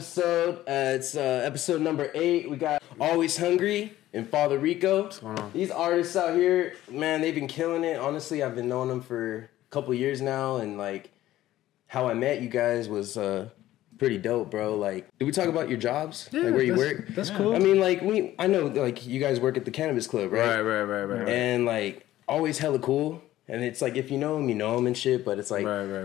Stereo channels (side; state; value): right; quieter; 14.5 dB